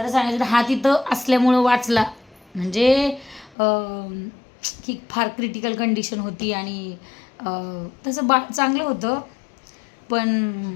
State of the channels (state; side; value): drops out; right; at 3.6 s